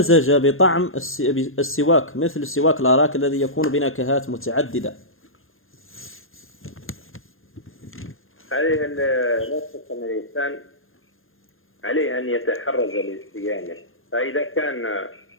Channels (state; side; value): late; right; 0.60 ms